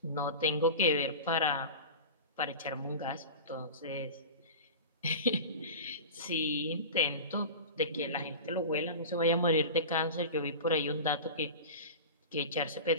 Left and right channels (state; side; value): inverted; both; correlation -0.31